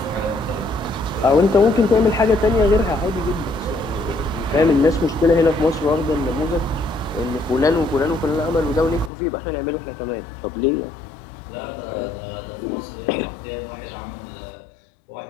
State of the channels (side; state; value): right; drops out; at 9.1 s